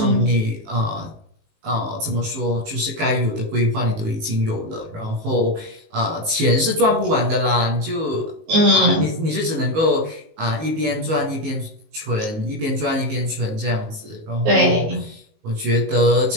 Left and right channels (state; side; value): late; left; 19 ms